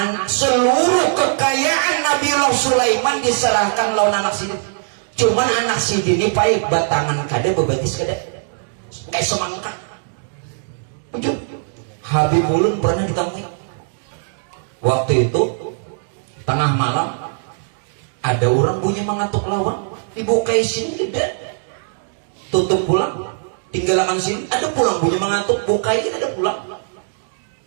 Seluruh kekayaan Nabiullah Sulaiman diserahkan lawan anak sidin. Cuman anak sidin ini pakai batangan kada bebatis kada kayak semangka. Habib Ulun pernah ditemui. Waktu itu tengah malam ada orang bunyi mengatuk lawan, dibukai sini tidak, tutup pulang, tinggalkan sini, ada pulang bunyi mengatuk, bukai ada pulang.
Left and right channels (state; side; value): silent; left; digital silence